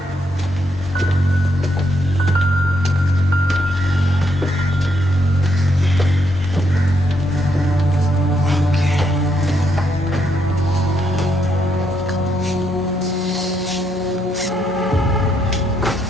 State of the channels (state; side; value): normal; both; correlation 0.76